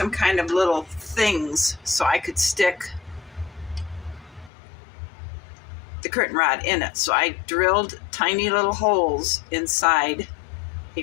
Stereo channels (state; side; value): drops out; right; at 4.5 s